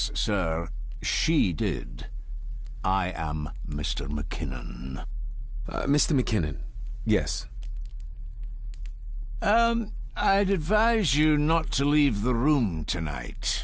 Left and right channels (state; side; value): identical; both; correlation 1.00